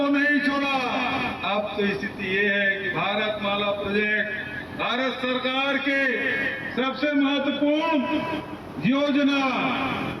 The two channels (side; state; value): both; identical; correlation 1.00